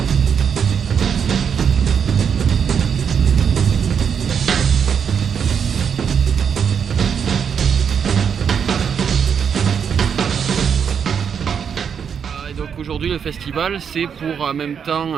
Aujourd'hui, le festival, c'est pour en même temps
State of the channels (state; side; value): quieter; left; 7.3 dB